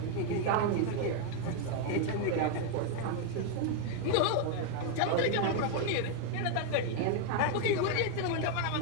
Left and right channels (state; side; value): different; both; correlation 0.00